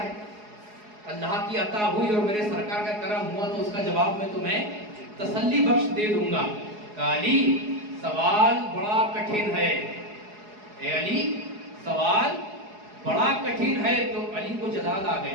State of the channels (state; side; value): late; left; 4.8 ms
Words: ہے؟ اللہ کی عطا ہوئی اور میرے سرکار کا کرم ہوا تو اس کا جواب میں تمہیں تسلی بخش دے دوں گا۔ کہا علی سوال بڑا کٹھن ہے، اے علی سوال بڑا کٹھن ہے۔ تو علی کو جلال آ